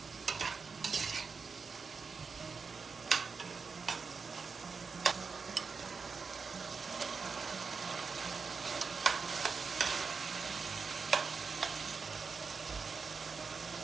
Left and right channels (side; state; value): left; quieter; 5.1 dB